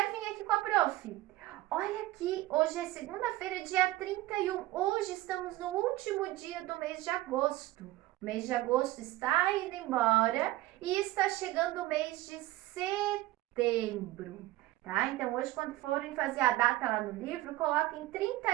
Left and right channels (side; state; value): left; quieter; 16.9 dB